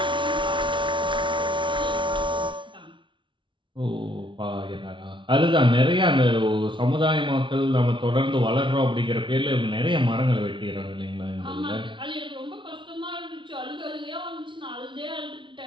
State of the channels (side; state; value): left; late; 0.24 ms